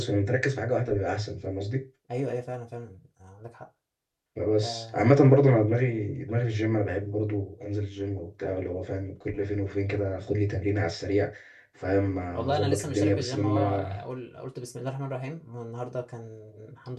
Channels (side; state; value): both; identical; correlation 1.00